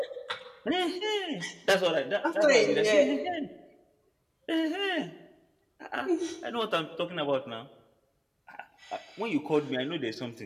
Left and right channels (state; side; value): identical; both; correlation 1.00